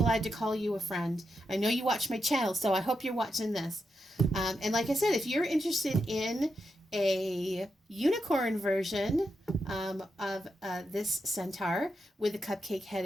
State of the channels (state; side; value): normal; both; correlation 0.85